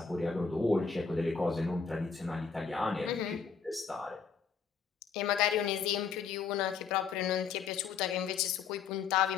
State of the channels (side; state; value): right; quieter; 6.0 dB